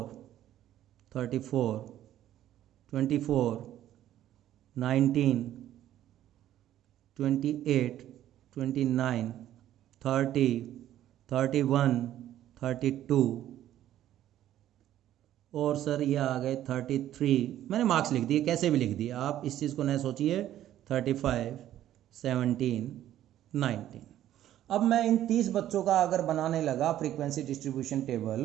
34, 24, 19, 28, 29, 30, 31, 32 और सर ये आ गए 33। मैंने मार्क्स लिख दिए, कैसे भी लिख दिए, आप इस चीज़ को न सोचिए। 35, 17, 19। अब मैं इन 30 बच्चों का अगर बनाने लगा फ्रीक्वेंसी डिस्ट्रीब्यूशन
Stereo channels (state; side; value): quieter; left; 12.4 dB